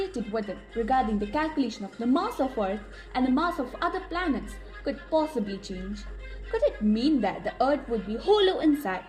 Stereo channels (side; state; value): both; identical; correlation 1.00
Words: with it regarding the calculation of the mass of Earth and the mass of other planets could possibly change. Could it mean that the Earth would be hollow inside